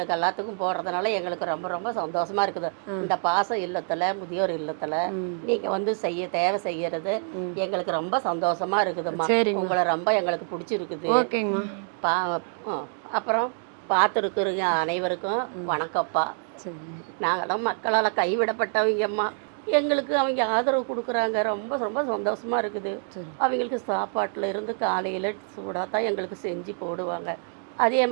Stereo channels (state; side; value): silent; left; 61 dB below the other